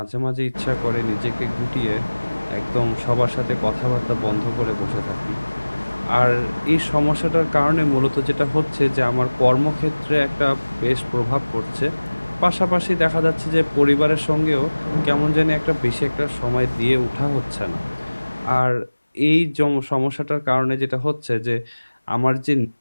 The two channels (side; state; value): both; inverted; correlation -1.00